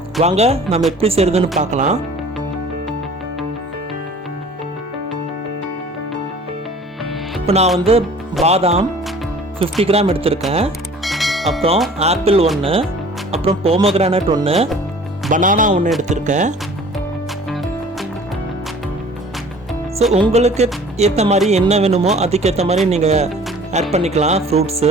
வாங்க நம்ம எப்படி செய்யறதுன்னு பார்க்கலாம். இப்போ நான் பாதாம் 50 கிராம் எடுத்திருக்கேன். அப்புறம் ஆப்பிள் 1, அப்புறம் போமோகிரானேட் 1, பனானா 1 எடுத்திருக்கேன். ஸோ உங்களுக்கு ஏற்ற மாதிரி என்ன வேணுமோ அதுக்கேற்ற மாதிரி நீங்கள் ஆட் பண்ணிக்கலாம் ஃப்ரூட்ஸு.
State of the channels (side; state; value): both; normal; correlation 0.48